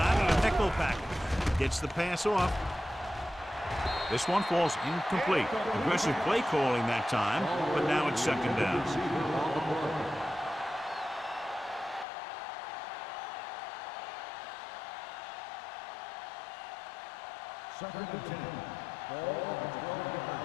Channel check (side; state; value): right; drops out; at 12.1 s